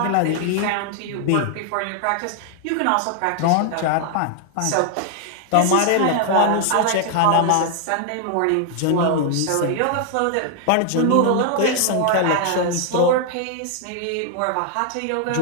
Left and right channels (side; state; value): both; different; correlation 0.00